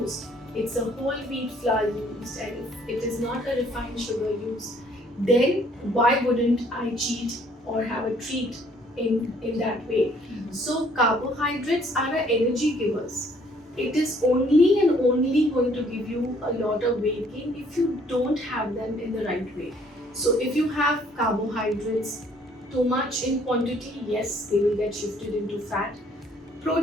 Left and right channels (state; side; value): normal; both; correlation 0.62